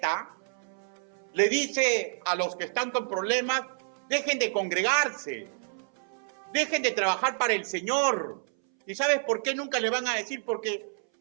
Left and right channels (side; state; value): left; silent; 59 dB below the other